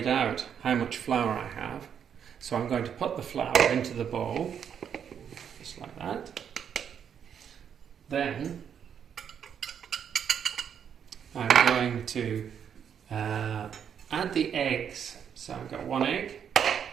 out how much flour I have, so I'm going to put the flour into the bowl, just like that. Then I'm going to add the eggs. So I've got 1 egg,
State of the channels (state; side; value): quieter; left; 8.1 dB